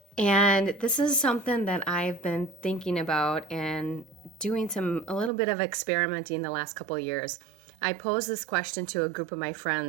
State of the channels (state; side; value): drops out; left; at 5.3 s